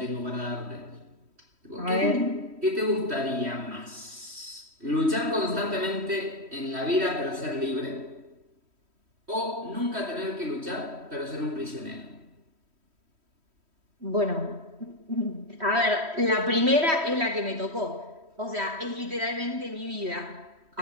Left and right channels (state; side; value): late; left; 3.1 ms